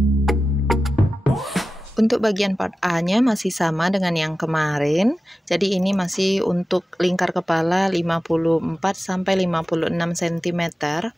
Untuk bagian part A-nya masih sama dengan yang kemarin. Jadi ini masih untuk lingkar kepala 54 sampai 56 cm.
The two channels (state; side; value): normal; both; correlation 0.94